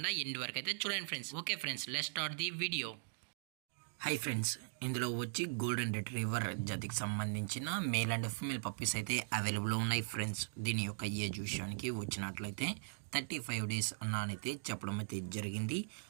ఎండ్ వరకు అయితే చూడండి friends. Okay friends, let's start the video. Hi friends, ఇందులో వచ్చి గోల్డెన్ రిట్రీవర్ జాతికి సంబంధించిన మేల్ అండ్ ఫీమేల్ పప్పీస్ అయితే అవైలబుల్లో ఉన్నాయి ఫ్రెండ్స్. దీని యొక్క ఏజ్ విషయానికి వచ్చినట్లయితే 35 days అన్నానైతే చెప్పడం అయితే జరిగింది.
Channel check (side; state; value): left; silent; digital silence